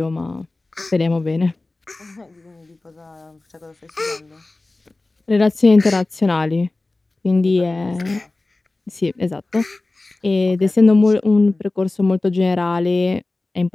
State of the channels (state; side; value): quieter; right; 3.1 dB